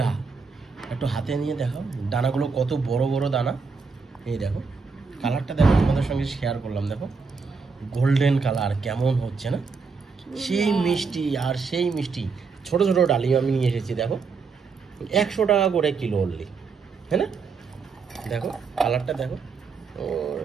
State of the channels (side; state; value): left; quieter; 4.9 dB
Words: একটু হাতে নিয়ে দেখো দানাগুলো কত বড় বড় দানা। এই দেখো কালারটা দেখো, তোমাদের সঙ্গে শেয়ার করলাম। দেখো গোল্ডেন কালার কেমন হচ্ছে না, সেই মিষ্টি আর সেই মিষ্টি। ছোট ছোট ডালিম আমি নিয়ে এসেছি, দেখো 100 টাকা করে কিলো অনলি, হ্যাঁ না? দেখো কালারটা দেখো, ও